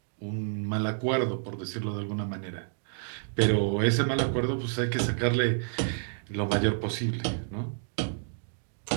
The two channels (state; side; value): silent; left; digital silence